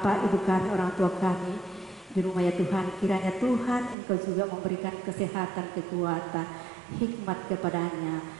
Ibu kami, orang tua kami di rumah ya Tuhan. Kiranya Tuhan Engkau juga memberikan kesehatan, kekuatan, hikmat kepadanya,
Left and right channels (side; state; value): left; drops out; at 4.0 s